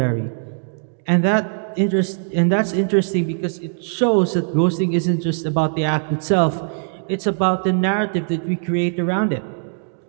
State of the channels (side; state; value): left; silent; digital silence